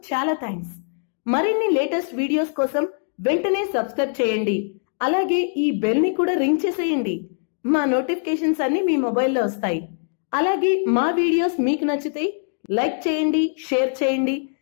చాలా థ్యాంక్స్. మరిన్ని లేటెస్ట్ వీడియోస్ కోసం వెంటనే సబ్స్క్రైబ్ చేయండి. అలాగే ఈ బెల్ ని కూడా రింగ్ చేసేయండి. మా నోటిఫికేషన్స్ అన్ని మీ మొబైల్లో వస్తాయి. అలాగే మా వీడియోస్ మీకు నచ్చితే లైక్ చేయండి, షేర్ చేయండి,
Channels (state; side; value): silent; right; digital silence